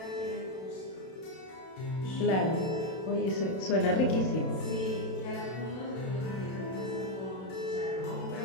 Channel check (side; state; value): right; late; 32 ms